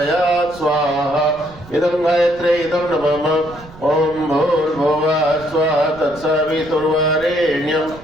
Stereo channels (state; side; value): noise; right; rumble, 20 dB below the sound